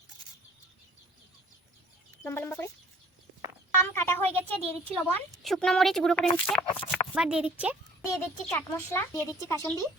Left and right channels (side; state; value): both; normal; correlation 0.53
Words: লম্বা লম্বা করে। আম কাটা হয়ে গেছে, দিয়ে দিচ্ছি লবণ, শুকনো মরিচ গুঁড়ো করে নিচ্ছে। এবার দিয়ে দিচ্ছি চাট মশলা, দিয়ে দিচ্ছি কাসুন্দি।